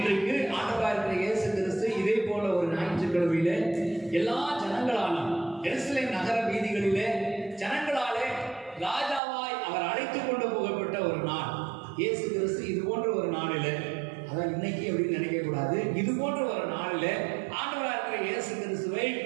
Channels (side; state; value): left; drops out; at 9.2 s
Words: ஆண்டவராகிய இருக்கிற இயேசு கிறிஸ்து இதே போல ஒரு ஞாயிற்றுக்கிழமையிலே எல்லா ஜனங்களாலும் எருசலேம் நகர வீதிகளிலே ஜனங்களாலே ராஜாவாய் அவர் அழைத்துக் கொண்டு போகப்பட்ட ஒரு நாள். இயேசு கிறிஸ்து இது போன்ற ஒரு நாளில், அதான் இன்னைக்கு அப்படின்னு நினைக்க கூடாது, இது போன்ற ஒரு நாளில் ஆண்டவராக இருக்கிற இயேசு கிறிஸ்துவை